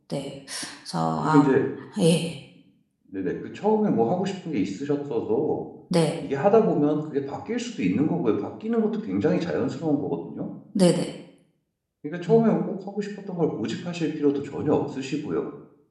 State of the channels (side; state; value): both; identical; correlation 1.00